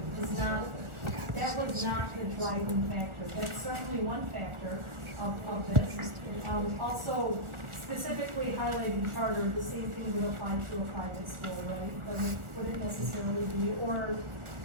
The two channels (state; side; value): late; left; 1.4 ms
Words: that was not the driving factor. That's certainly one factor of this. Also, specifically highlighting charter, the same thing would apply to a private school, right? Wouldn't necessarily be, or